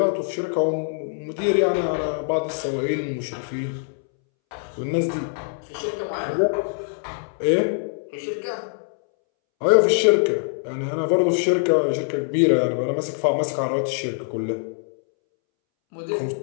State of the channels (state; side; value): silent; right; 63 dB below the other